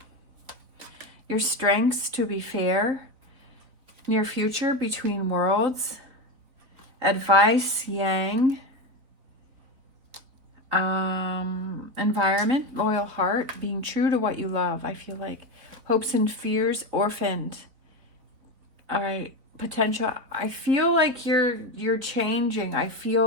Your strengths, to be fair. Near future, between worlds. Advice, Yang. Environment, loyal heart. Being true to what you love. I feel like hopes and fears, orphaned. All right. Potential. I feel like you're changing. I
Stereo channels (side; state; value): left; late; 4.0 ms